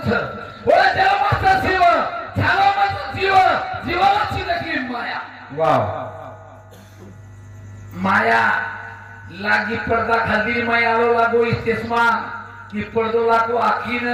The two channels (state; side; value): identical; both; correlation 1.00